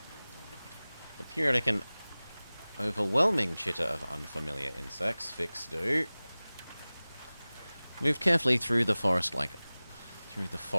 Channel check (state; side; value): inverted; both; correlation -0.99